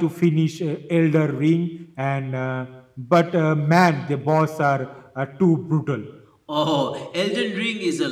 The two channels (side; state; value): both; identical; correlation 1.00